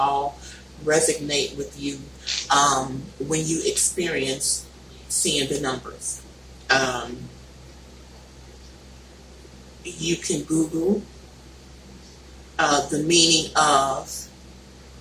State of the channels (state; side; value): identical; both; correlation 1.00